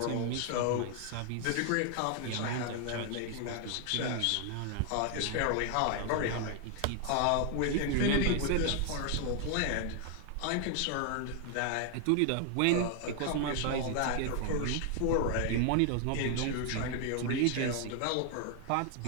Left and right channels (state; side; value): different; both; correlation 0.00